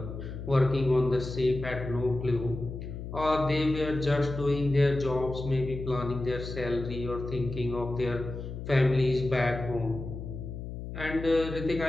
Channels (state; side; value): noise; left; hum, 8 dB below the sound